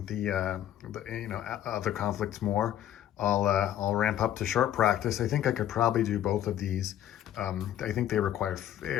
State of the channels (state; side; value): quieter; right; 11.5 dB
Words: the other conflicts more, I'll ramp up to short practice. I think I could probably do both of these. I think they require